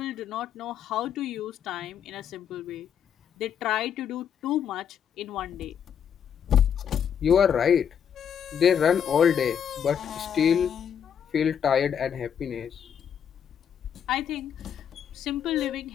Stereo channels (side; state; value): right; quieter; 8.2 dB